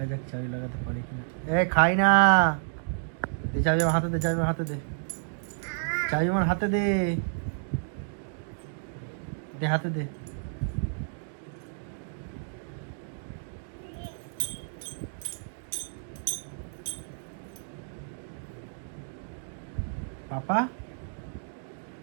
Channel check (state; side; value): silent; left; digital silence